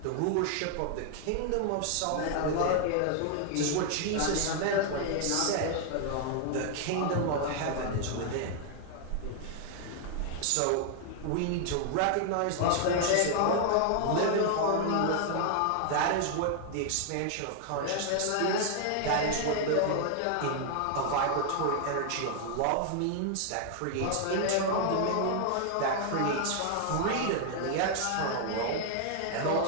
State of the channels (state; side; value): different; both; correlation 0.00